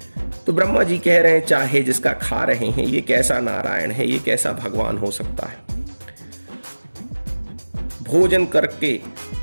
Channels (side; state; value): both; inverted; correlation -1.00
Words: तो ब्रह्मा जी कह रहे हैं, चाहे जिसका खा रहे हैं, ये कैसा नारायण है, ये कैसा भगवान हो सकता है। भोजन